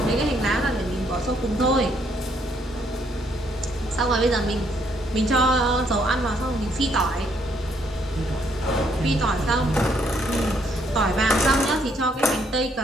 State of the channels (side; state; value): both; normal; correlation 0.70